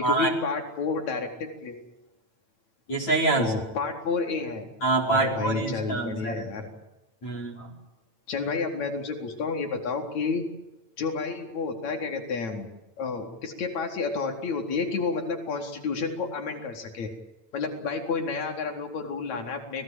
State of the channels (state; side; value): late; right; 8.9 ms